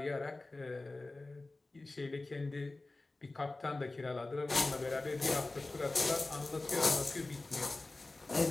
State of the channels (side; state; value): right; quieter; 3.1 dB